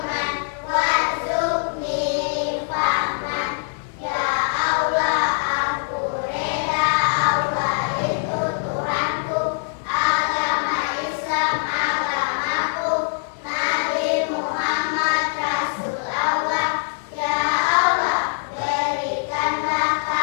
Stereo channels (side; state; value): right; silent; digital silence